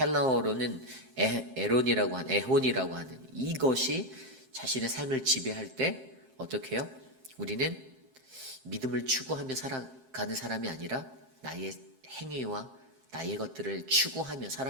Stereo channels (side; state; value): left; late; 12 ms